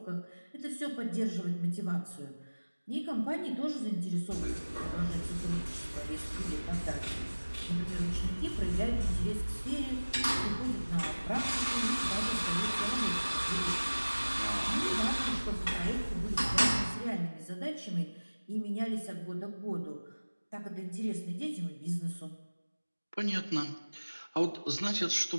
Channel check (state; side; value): inverted; both; correlation -1.00